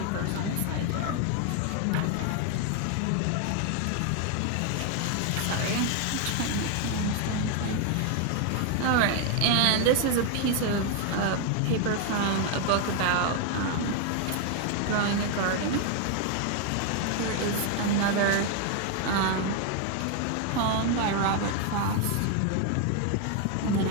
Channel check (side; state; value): both; different; correlation 0.01